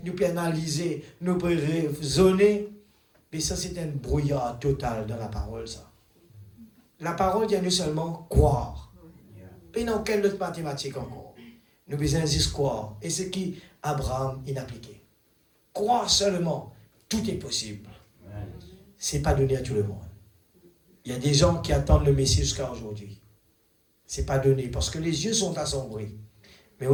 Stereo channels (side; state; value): both; identical; correlation 1.00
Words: nous pouvons analyser, nous pouvons raisonner. Mais ça, c'est un brouillard total dans la parole, ça. La parole vient nous seulement croire. Et dans quelle autre mathématique encore? Nous besoin juste croire. Et ce qui Abraham il appliqué. Croire seulement, tout est possible. Ce n'est pas donné à tout le monde. Il y a des gens qui attendent le Messie jusqu'à aujourd'hui. Ce n'est pas donné parce que les yeux sont assombris. Mais